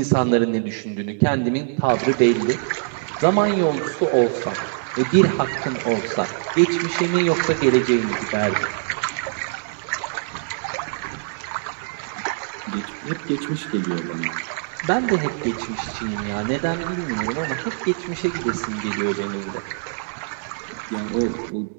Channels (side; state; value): left; silent; digital silence